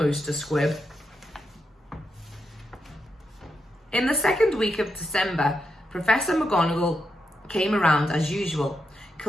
a squib. In the second week of December, Professor McGonagall came around as usual,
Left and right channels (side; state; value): both; normal; correlation 0.84